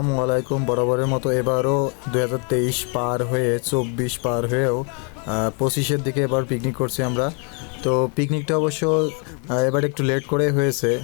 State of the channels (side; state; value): right; quieter; 37.5 dB